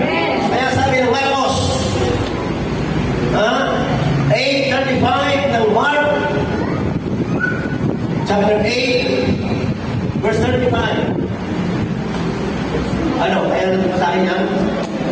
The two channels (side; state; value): both; identical; correlation 1.00